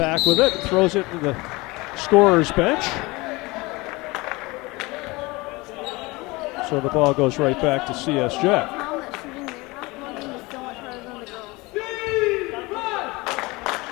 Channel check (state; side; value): quieter; right; 23.3 dB